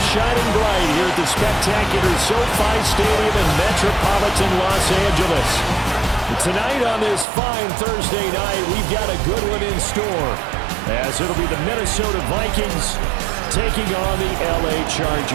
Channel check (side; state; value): left; drops out; at 7.2 s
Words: shining bright here at the spectacular SoFi Stadium in metropolitan Los Angeles. Tonight on this fine Thursday night, we've got a good one in store, as it'll be the Minnesota Vikings taking on the LA